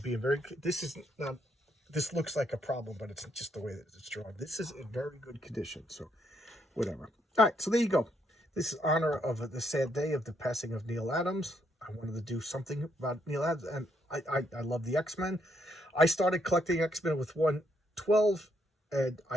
being very, this looks like a problem, but it's just the way that it's drawn. This is in very good condition, so whatever. All right, so there you go. This is honor of the sad day of the passing of Neal Adams. I wanted to do something about Neal Adams, and I love the X-Men. I started collecting X-Men with 112, and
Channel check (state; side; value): normal; both; correlation 0.74